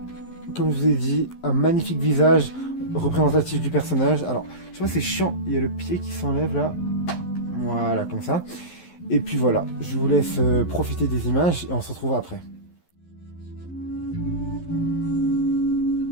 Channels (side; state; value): right; late; 11 ms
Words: comme je vous ai dit, un magnifique visage représentatif du personnage. Alors, je vois c'est chiant, il y a le pied qui s'enlève là. Voilà, comme ça. Et puis voilà, je vous laisse profiter des images et on se retrouve après.